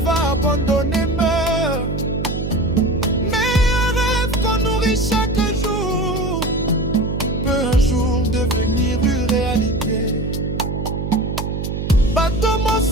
abandonné meurt, mais un rêve qu'on nourrit chaque jour peut un jour devenir une réalité. Bato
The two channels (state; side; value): noise; right; hum, 3 dB below the sound